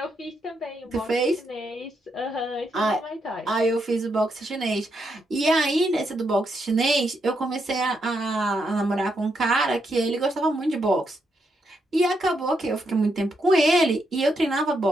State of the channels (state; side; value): normal; both; correlation 0.80